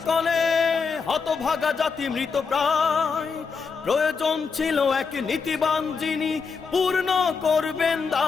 হতভাগা জাতি মৃত প্রায়, প্রয়োজন ছিল এক নীতিবান যিনি পূর্ণ করবেন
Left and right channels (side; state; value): right; quieter; 5.3 dB